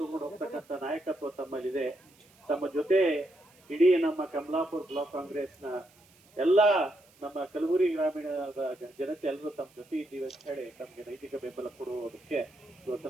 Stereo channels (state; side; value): noise; right; hiss, 29 dB below the sound